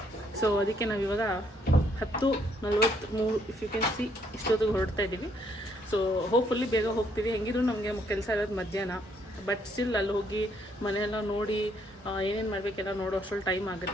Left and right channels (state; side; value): normal; both; correlation 0.70